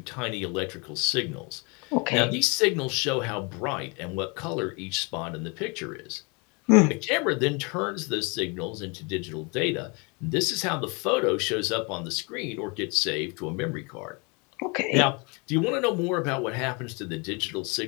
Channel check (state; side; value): quieter; right; 30.8 dB